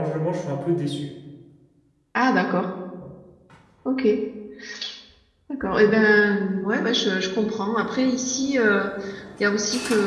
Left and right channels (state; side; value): identical; both; correlation 1.00